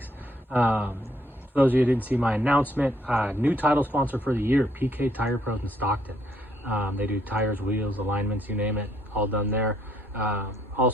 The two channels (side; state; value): both; normal; correlation 0.69